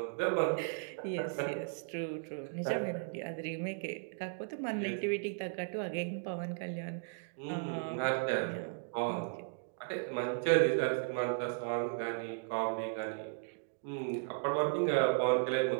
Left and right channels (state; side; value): silent; left; digital silence